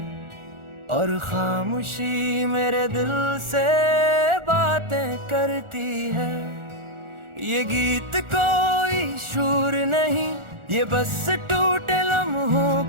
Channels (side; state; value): left; late; 1.4 ms